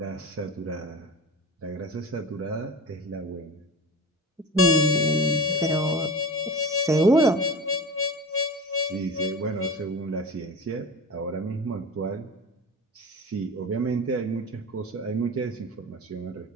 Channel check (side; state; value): both; normal; correlation 0.32